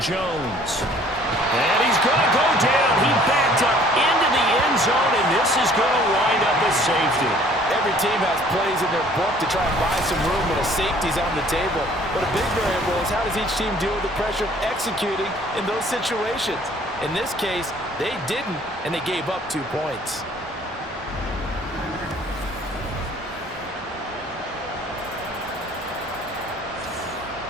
And he's going to go down. He backed up into the end zone, and this is going to wind up a safety. Every team has plays in their book to try and buy some room when a safety's on the table. But a big variable is how does each team deal with the pressure of executing in those situations. In this case, they didn't, and they gave up 2 points.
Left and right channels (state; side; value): normal; both; correlation 0.55